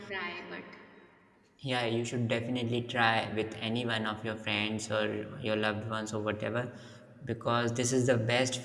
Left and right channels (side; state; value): both; identical; correlation 1.00